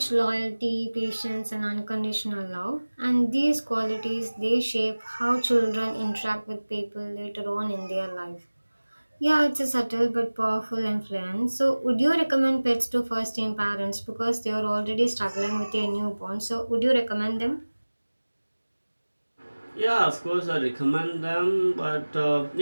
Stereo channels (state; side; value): inverted; both; correlation -1.00